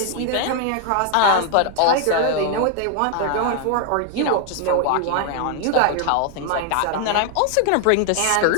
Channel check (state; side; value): different; both; correlation 0.00